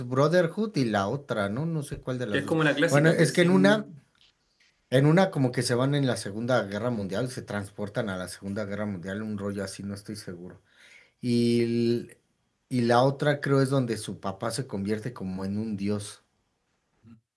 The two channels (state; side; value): identical; both; correlation 1.00